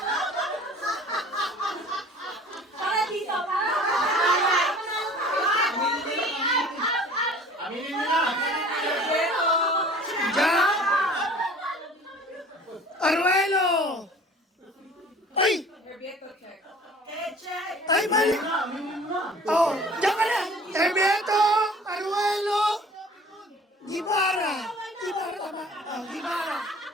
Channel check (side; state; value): both; normal; correlation 0.47